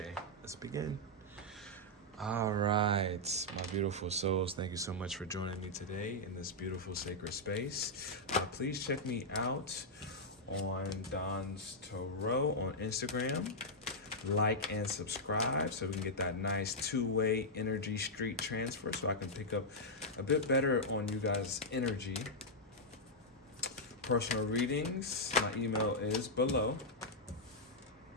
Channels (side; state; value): both; normal; correlation -0.06